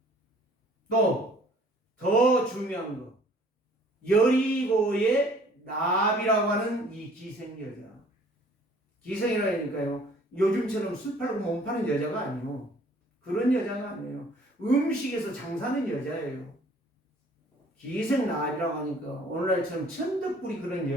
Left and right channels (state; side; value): normal; both; correlation 0.55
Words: 또 더 중요한 거, 여리고의 나비라고 하는 이 기생 여자. 기생이라니까요. 요즘처럼 술 팔고 몸 파는 여자가 아니에요. 그런 여자가 아니에요. 음식에서 장사하는 여자예요. 기생 나비라고 하니까 오늘날처럼 천덕꾸리 그런